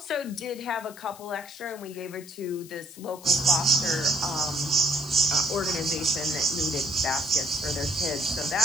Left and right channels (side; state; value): left; noise; hiss, 19 dB below the sound